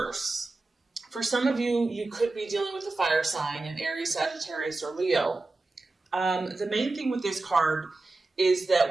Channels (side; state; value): left; quieter; 3.3 dB